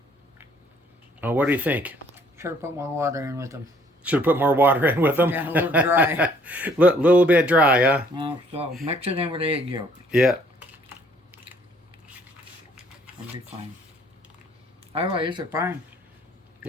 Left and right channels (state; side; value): normal; both; correlation 0.62